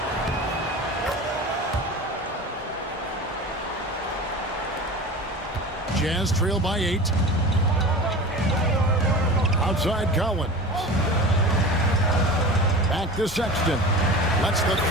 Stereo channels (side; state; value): both; normal; correlation 0.34